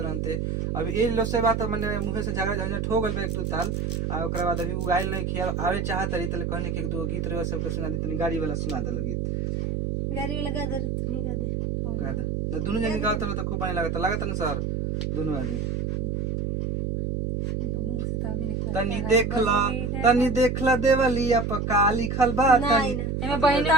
अभी ए लो से बात माने मुंह से झगड़ा झंझट हो गल एक दो ताल, आ ओकरा बाद अभी उगाइल नहीं खिया आवे चाहत रही तले कहने के एक दो गीत रे सबके सुना दी, तनी गाड़ी वाला सुना दे गीत, गाड़ी वाला गा दे तुम्ही गा दे न दोनों जनी गावत तो खूब पानी लागत न सर दोनों आदमी। तनी देखला देवलिया पका लिखल बा, तनी एमे बहिना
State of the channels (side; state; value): right; noise; hum, 1 dB below the sound